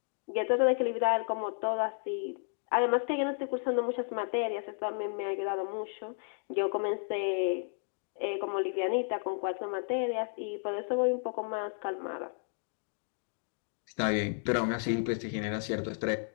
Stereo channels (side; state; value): right; silent; digital silence